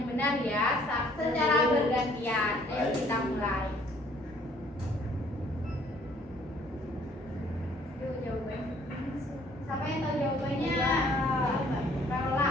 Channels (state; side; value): normal; both; correlation 0.60